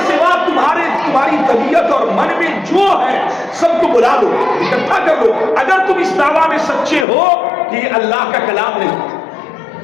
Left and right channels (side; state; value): right; drops out; at 7.1 s